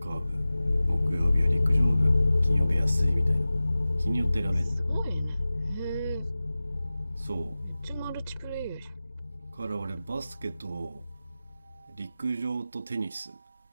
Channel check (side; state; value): both; inverted; correlation -0.97